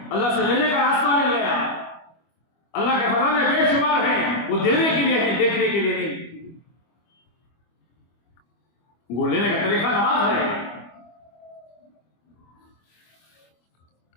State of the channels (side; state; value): right; late; 25 ms